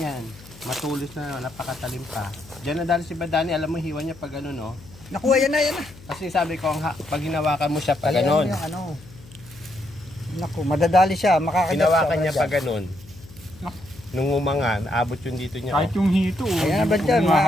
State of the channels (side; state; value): left; noise; hum, 20 dB below the sound